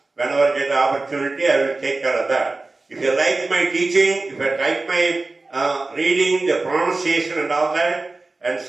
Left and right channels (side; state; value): left; quieter; 3.4 dB